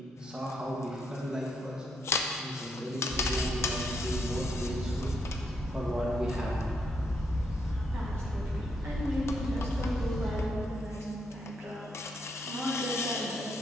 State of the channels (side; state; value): both; normal; correlation 0.76